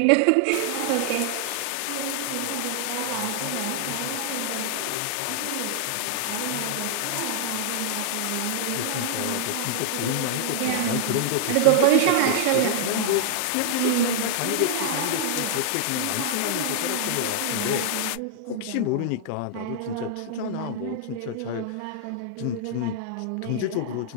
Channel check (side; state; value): both; different; correlation -0.01